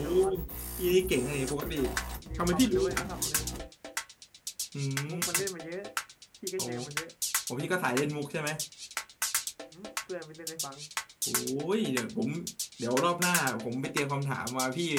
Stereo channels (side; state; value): both; identical; correlation 1.00